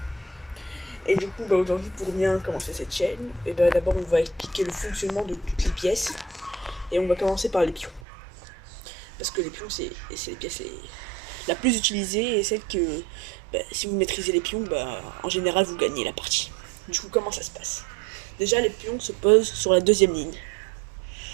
Et du coup, aujourd'hui, pour bien commencer cette chaîne, d'abord on va expliquer le fonctionnement de toutes les pièces. Et on va commencer par les pions. Parce que les pions, c'est les pièces la plus utilisée et celle que, si vous maîtrisez les pions, en général, vous gagnez la partie. Du coup, comment ça se passe? Déjà, les pions se posent sur la deuxième ligne.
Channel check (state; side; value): drops out; left; at 8.0 s